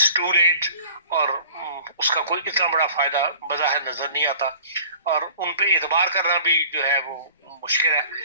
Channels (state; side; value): inverted; both; correlation -0.47